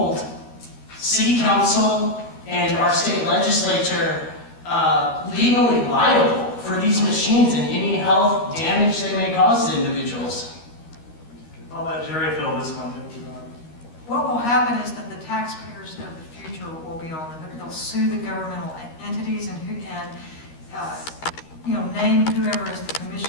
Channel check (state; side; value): late; right; 13 ms